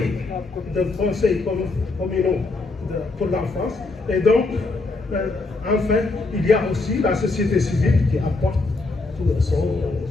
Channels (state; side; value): quieter; right; 3.5 dB